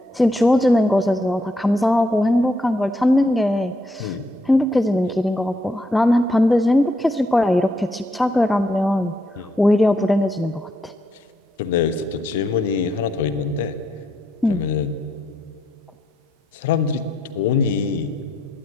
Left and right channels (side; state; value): both; normal; correlation 0.77